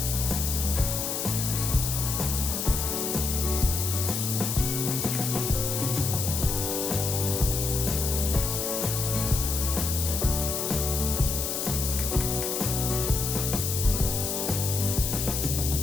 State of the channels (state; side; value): noise; left; hiss, 2 dB below the sound